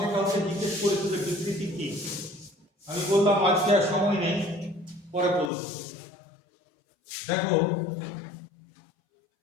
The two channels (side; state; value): right; drops out; at 5.5 s